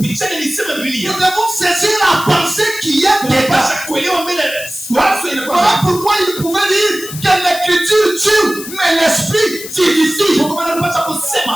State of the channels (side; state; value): left; noise; hiss, 11 dB below the sound